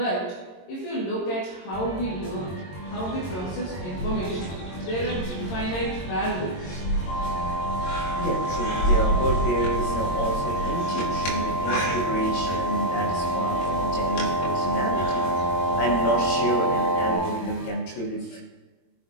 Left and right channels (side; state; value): right; late; 22 ms